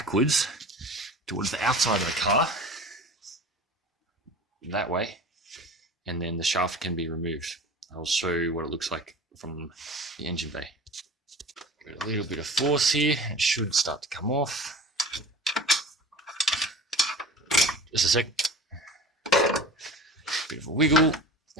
towards the outside of the car, that way, and then the shaft can be removed. I'll show you what it looks like from the engine bay. Give it a little bit of force here, it should start to come off. Just a sec. Bit of a wiggle.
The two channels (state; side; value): normal; both; correlation 0.38